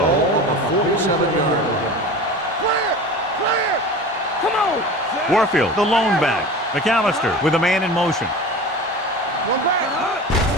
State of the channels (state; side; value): normal; both; correlation 0.34